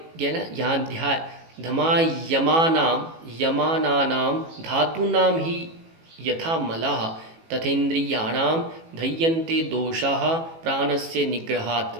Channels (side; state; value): left; late; 18 ms